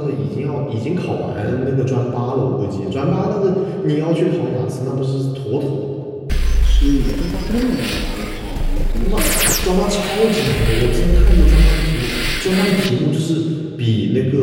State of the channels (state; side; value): identical; both; correlation 1.00